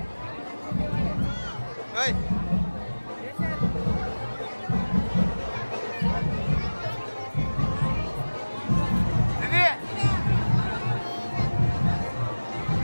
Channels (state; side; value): inverted; both; correlation -1.00